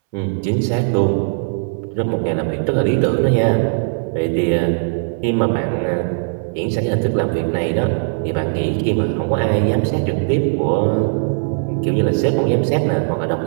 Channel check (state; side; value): silent; left; 65 dB below the other